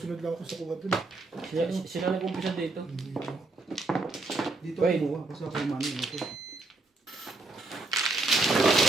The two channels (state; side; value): quieter; left; 3.1 dB